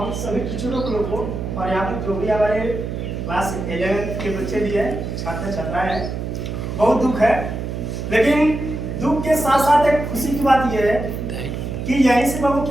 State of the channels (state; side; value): noise; right; hum, 5 dB below the sound